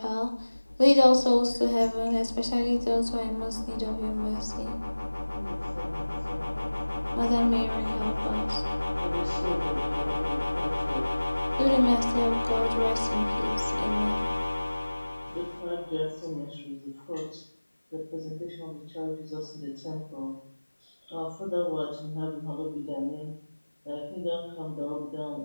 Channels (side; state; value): both; inverted; correlation -1.00